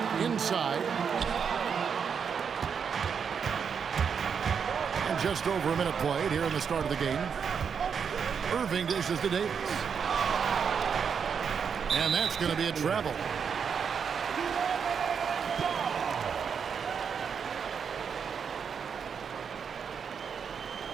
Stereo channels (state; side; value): quieter; left; 6.7 dB